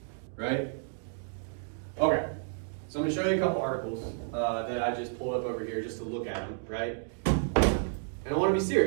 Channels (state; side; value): silent; left; digital silence